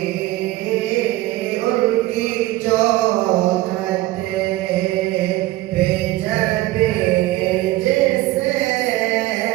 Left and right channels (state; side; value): quieter; left; 17.5 dB